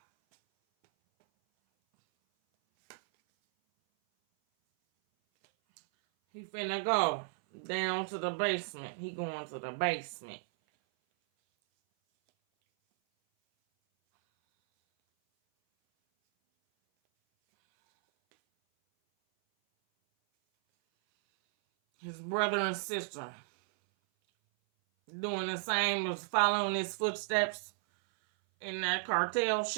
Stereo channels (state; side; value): silent; left; 55 dB below the other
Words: He finna go down to the basement. He going to the basement. His brother and sister doing the same as following his footsteps in that cartel